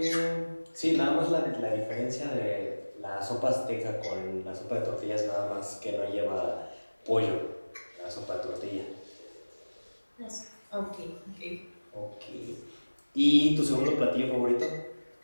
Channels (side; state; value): both; inverted; correlation -1.00